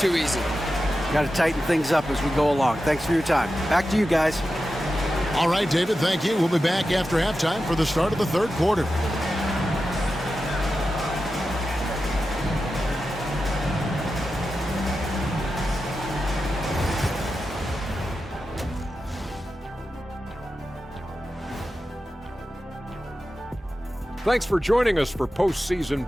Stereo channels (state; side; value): normal; both; correlation 0.91